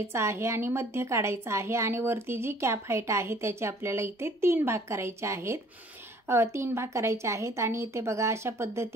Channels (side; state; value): both; normal; correlation 0.55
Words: आहे आणि मध्य काढायचा आहे आणि वरती जी कॅप हाईट आहे त्याचे आपल्याला इथे 3 भाग करायचे आहेत। 3 भाग करायचे आहेत आणि इथे बघा, अशा